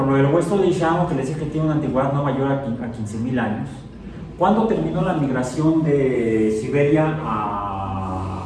lo del hueso de Ishamo, que les dije que tiene una antigüedad no mayor a 15.000 años, ¿cuándo terminó la migración de Siberia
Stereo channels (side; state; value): both; identical; correlation 1.00